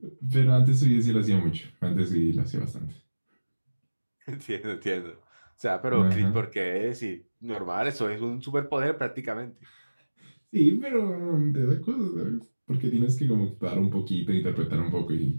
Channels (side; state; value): both; inverted; correlation -1.00